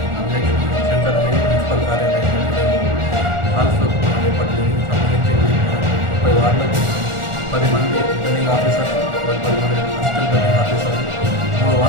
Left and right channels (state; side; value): late; left; 1.4 ms